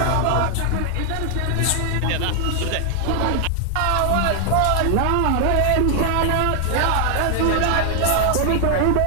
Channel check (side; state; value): both; different; correlation 0.00